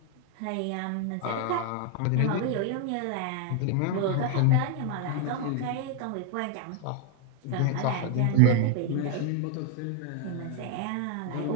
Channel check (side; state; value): both; different; correlation 0.00